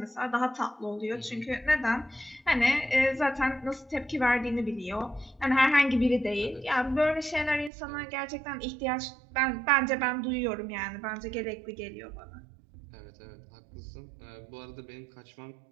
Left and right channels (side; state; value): left; drops out; at 7.7 s